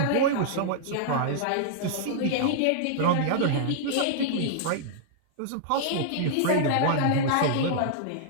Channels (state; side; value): different; both; correlation -0.02